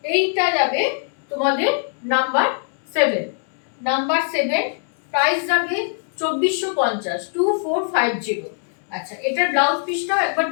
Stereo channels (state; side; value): silent; right; 63 dB below the other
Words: এইটা যাবে তোমাদের নাম্বার 7, নাম্বার 7 প্রাইস যাবে 2450, 2450। আচ্ছা, এটার ব্লাউজ পিসটাও একবার